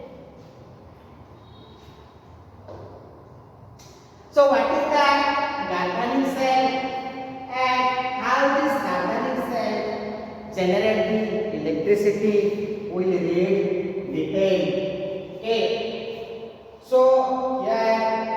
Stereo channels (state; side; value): identical; both; correlation 1.00